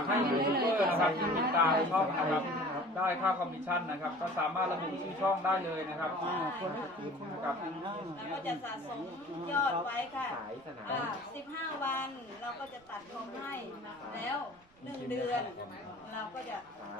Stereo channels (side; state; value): right; noise; rumble, 30 dB below the sound